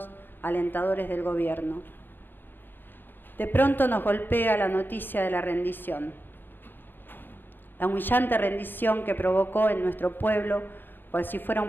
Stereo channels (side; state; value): right; late; 0.096 ms